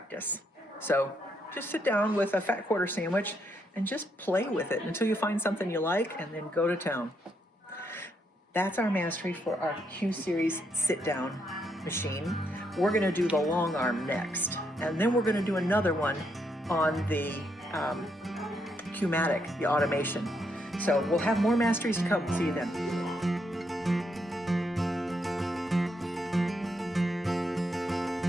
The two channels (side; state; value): both; normal; correlation 0.77